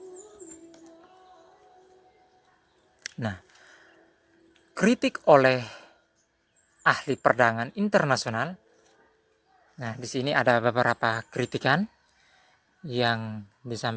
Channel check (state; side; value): identical; both; correlation 1.00